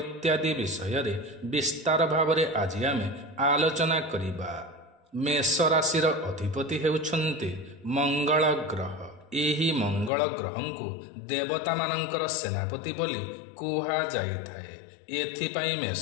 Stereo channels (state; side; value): drops out; right; at 10.1 s